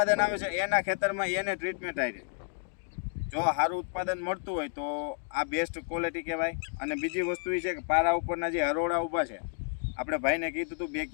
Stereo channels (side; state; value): right; silent; digital silence